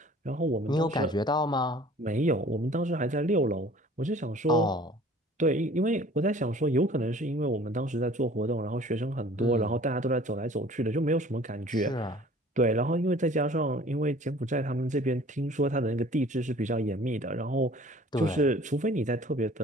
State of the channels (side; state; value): both; normal; correlation 0.50